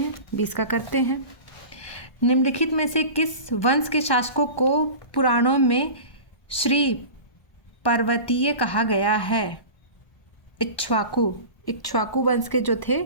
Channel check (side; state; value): right; late; 1.2 ms